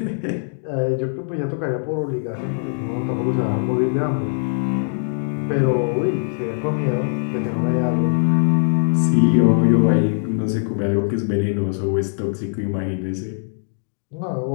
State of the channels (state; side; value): silent; right; digital silence